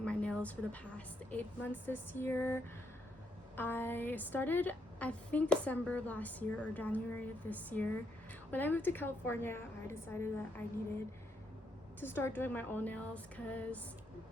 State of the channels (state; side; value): normal; both; correlation 0.76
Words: my nails for the past 8 months this year. I started I think December of last year or January of this year. When I moved to California, I decided that I needed to start doing my own nails because